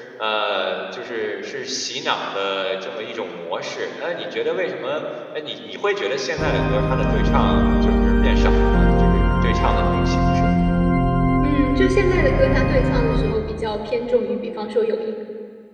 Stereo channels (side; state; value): both; identical; correlation 1.00